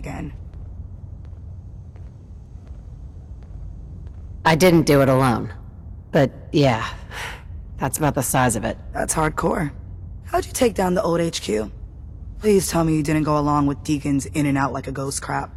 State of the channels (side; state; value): both; identical; correlation 1.00